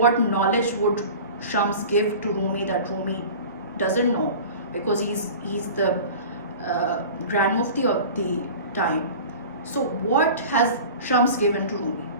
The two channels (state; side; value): inverted; both; correlation -0.38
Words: knowledge would Shams give to Rumi that Rumi doesn't know? Because he's the Grand Mufti of the time. So what has Shams given to Rumi?